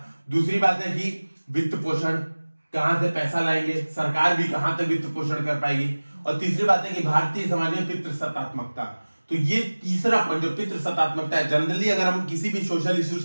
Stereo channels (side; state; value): both; inverted; correlation -1.00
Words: दूसरी बात है कि वित्त पोषण, कहां से पैसा लाएंगे, सरकार भी कहां तक वित्त पोषण कर पाएगी। और तीसरी बात है कि भारतीय समाज में पितृसत्तात्मकता। तो ये तीसरा पॉइंट जो पितृसत्तात्मकता है, जनरली अगर हम किसी भी सोशल इश्यूज